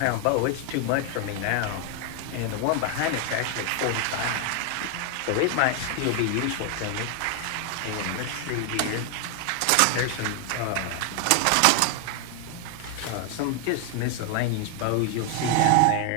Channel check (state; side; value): different; both; correlation 0.00